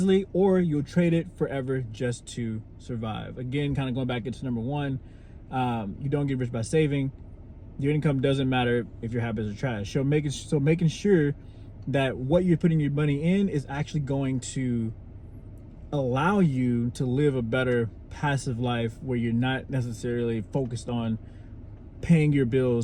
or you'll trade it forever just to survive. Again, kind of going back into number 1, you don't get rich by saving. Your income doesn't matter if your habits are trash. So making sure that what you're putting your money in is actually going to allow you to live a better passive life where you're not necessarily focused on paying your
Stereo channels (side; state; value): both; identical; correlation 1.00